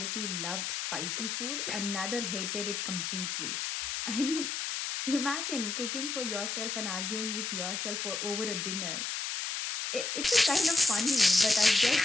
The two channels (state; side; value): noise; left; hiss, 3 dB below the sound